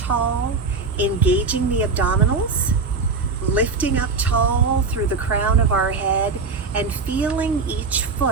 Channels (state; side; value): quieter; left; 4.5 dB